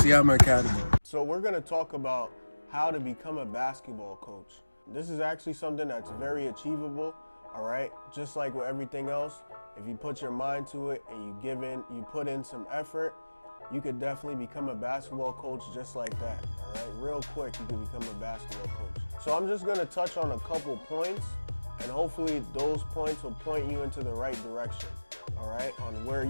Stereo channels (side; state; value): both; inverted; correlation -1.00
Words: Academy. So we're going to talk about how to become a basketball coach. This is actually something that's very achievable, all right? Just like with everything else, if you put your mind to it and you put in some effort, you could definitely become a basketball coach just like that, all right? Real quick, you could become a basketball coach. So I'm just gonna touch on a couple points, and hopefully those points will point you into the right direction, all right? On where